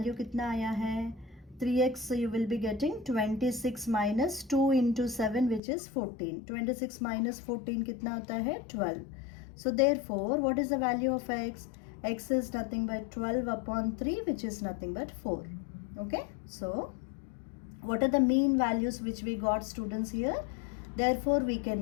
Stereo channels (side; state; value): right; drops out; at 5.6 s